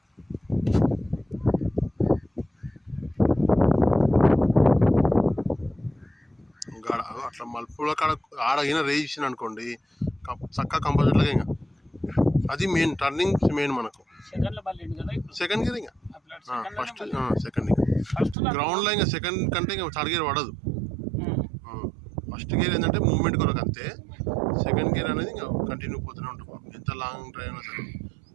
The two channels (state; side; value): drops out; left; at 18.4 s